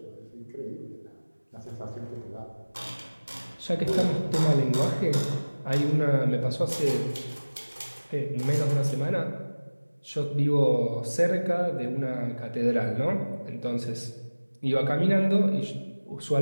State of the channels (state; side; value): inverted; both; correlation -1.00